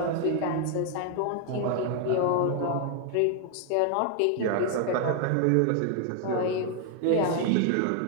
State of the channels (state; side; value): different; both; correlation 0.00